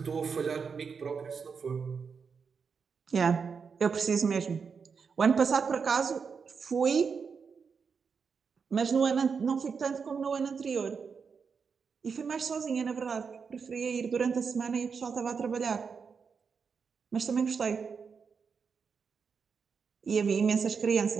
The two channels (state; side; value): quieter; left; 5.8 dB